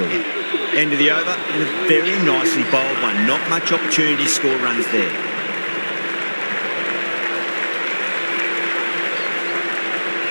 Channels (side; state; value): both; inverted; correlation -1.00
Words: End of the over, and a very nicely bowled one. Not much opportunity to score runs there.